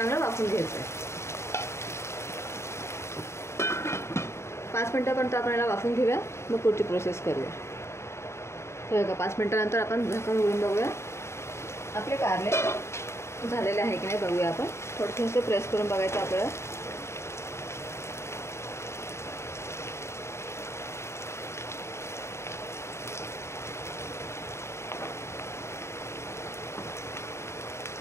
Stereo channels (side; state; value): right; late; 0.13 ms